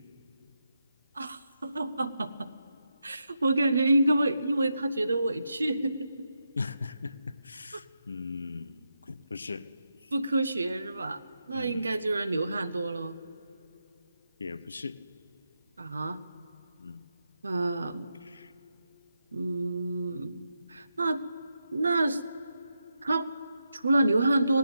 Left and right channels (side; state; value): both; inverted; correlation -0.86